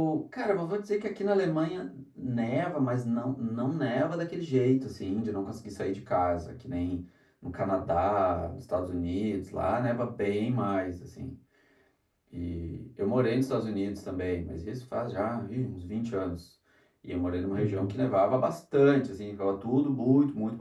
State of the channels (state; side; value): identical; both; correlation 1.00